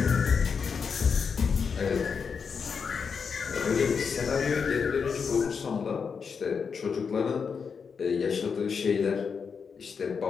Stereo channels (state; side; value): quieter; right; 5.9 dB